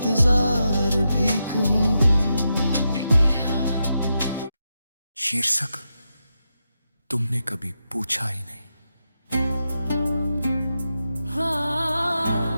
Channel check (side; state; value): both; inverted; correlation -0.87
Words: भी कहूँ। शीर्षक तुमने कभी पूछा ही नहीं।